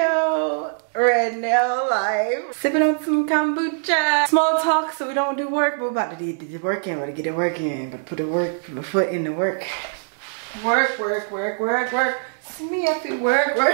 right now, live, sipping on some kombucha. Small talk so we don't do work, but we're about to do the work in, we're about to get it working, but put the foot in the work. Work. Me have to work.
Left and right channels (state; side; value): silent; left; digital silence